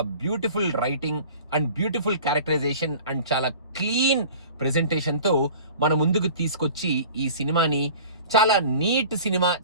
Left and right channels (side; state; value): both; inverted; correlation -0.43